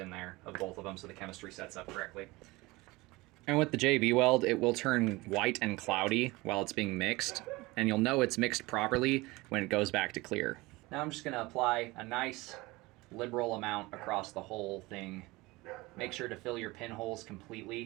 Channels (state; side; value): quieter; left; 21.8 dB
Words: there of both of them so the chemistry sets up correctly. And with the JB Weld, it will turn white and cloudy while it's being mixed, and you'll know it's mixed properly when it goes back to clear. Now I'm just going to apply a nice liberal amount across the whole thing. Make sure to fill your pinholes